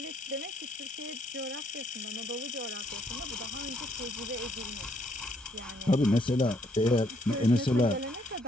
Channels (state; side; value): normal; both; correlation 0.69